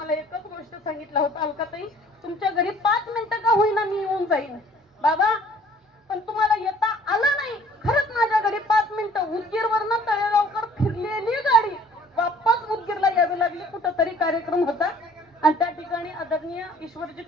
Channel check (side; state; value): both; normal; correlation 0.54